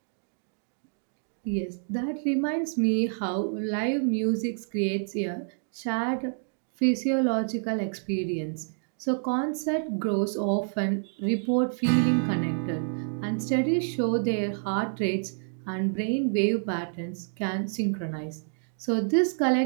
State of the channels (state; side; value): silent; left; 59 dB below the other